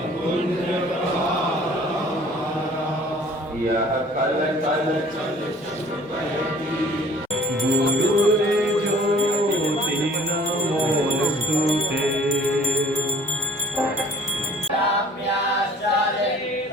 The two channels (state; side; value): normal; both; correlation 0.53